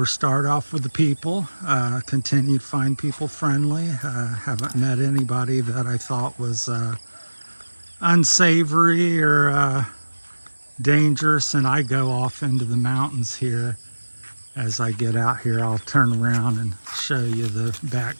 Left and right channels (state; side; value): inverted; both; correlation -1.00